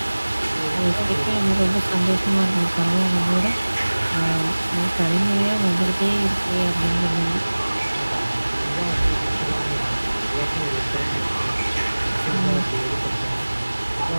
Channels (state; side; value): inverted; both; correlation -1.00